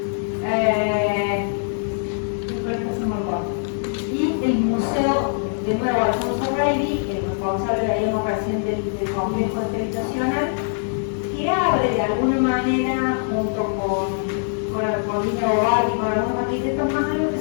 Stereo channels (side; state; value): right; silent; digital silence